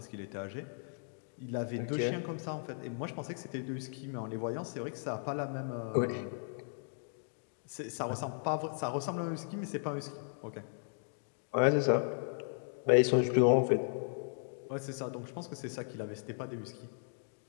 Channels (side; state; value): right; silent; digital silence